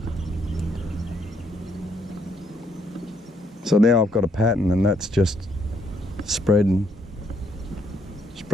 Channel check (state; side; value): normal; both; correlation 0.71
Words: So now I've got a pattern, and that's just spread and